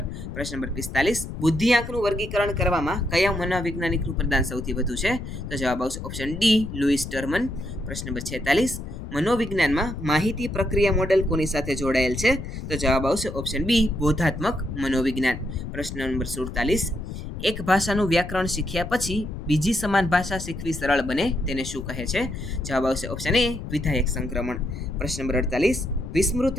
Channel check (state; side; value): noise; left; rumble, 8 dB below the sound